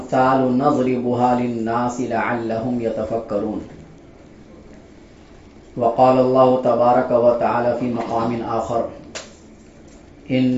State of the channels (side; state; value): both; identical; correlation 1.00